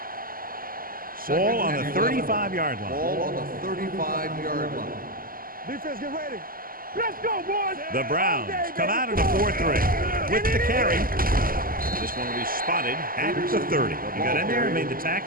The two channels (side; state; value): left; late; 0.42 ms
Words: Ball on the 35-yard line. Ball on the 35-yard line. Defense, get ready. Let's go, boys. The Browns come out in a 4-3 with the carry. This one will be spotted at the 30. He got in there and made the